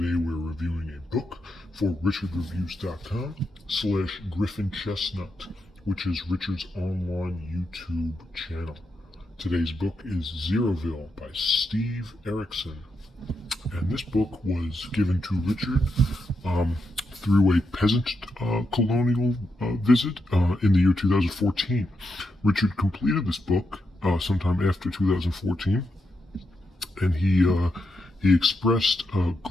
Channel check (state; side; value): normal; both; correlation 0.84